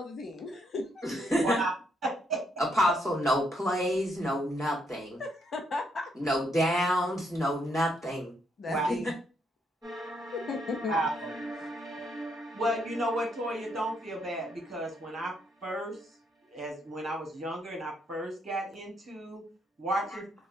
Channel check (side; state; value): both; normal; correlation 0.74